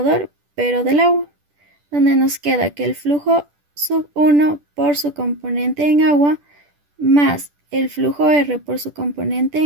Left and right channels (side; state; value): left; late; 10 ms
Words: pero del agua, donde nos queda que el flujo sub 1 por su componente en agua más el flujo R por su componente